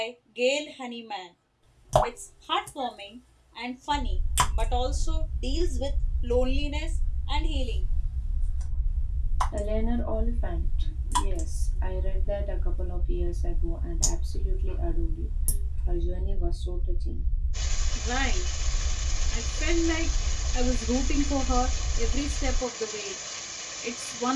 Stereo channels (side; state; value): both; identical; correlation 1.00